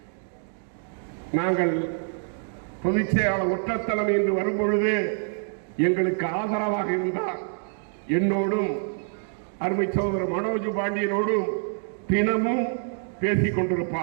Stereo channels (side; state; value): left; silent; digital silence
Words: நாங்கள் பொதுச் செயலாளர் ஒற்றத்தலைமை என்று வரும்பொழுது எங்களுக்கு ஆதரவாக இருந்தார். என்னோடும் அருமை சகோதரர் மனோஜ் பாண்டியனோடும் தினமும் பேசிக்